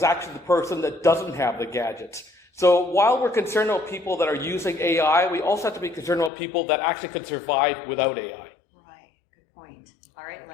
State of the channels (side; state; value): right; drops out; at 6.3 s